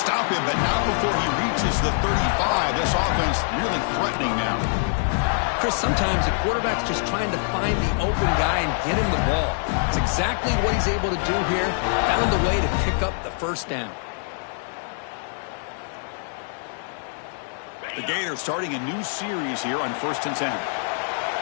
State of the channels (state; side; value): silent; right; 62 dB below the other